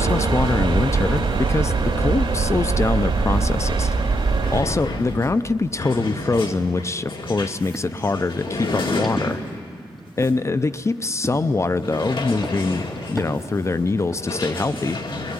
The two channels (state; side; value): normal; both; correlation 0.79